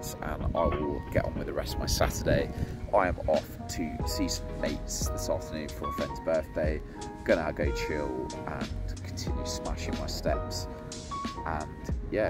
and I will get on with the rest of my Saturday. I am off to see some mates this afternoon for a friend's birthday. Gonna go chill and continue smashing my steps, and yeah,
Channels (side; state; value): both; identical; correlation 1.00